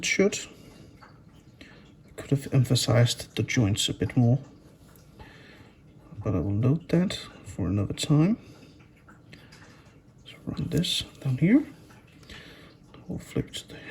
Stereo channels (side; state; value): both; identical; correlation 1.00